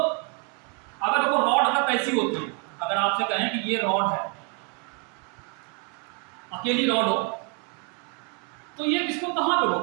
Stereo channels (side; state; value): left; quieter; 36.1 dB